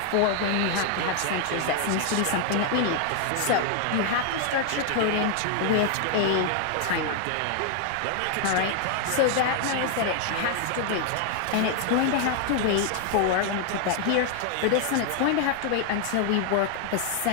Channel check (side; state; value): both; different; correlation 0.00